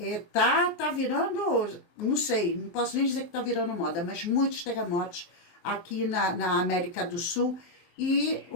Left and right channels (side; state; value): right; late; 23 ms